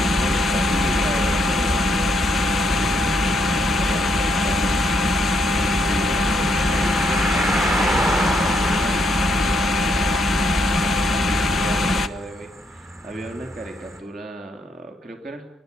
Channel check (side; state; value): both; normal; correlation 0.75